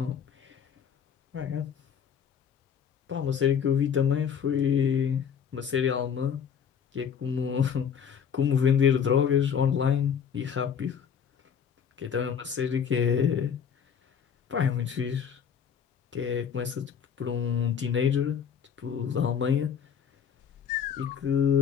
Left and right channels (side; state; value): right; quieter; 7.6 dB